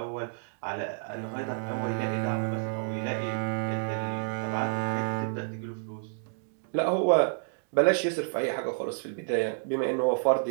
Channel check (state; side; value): silent; left; digital silence